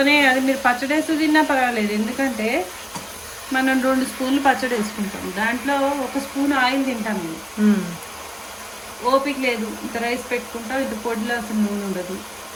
అది మీరు పచ్చడి వేస్తూ తిన్నా పర్వాలేదు. ఎందుకంటే మనం 2 స్పూన్లు పచ్చడి వేసుకుంటాం, దాంట్లో 1 స్పూన్ ఆయిల్ తింటాం. మేము ఓపిక లేదు, ఇంత రైస్ పెట్టుకుంటాం, ఇంత పొడిలో అసలు నూనె ఉండదు.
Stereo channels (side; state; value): both; identical; correlation 1.00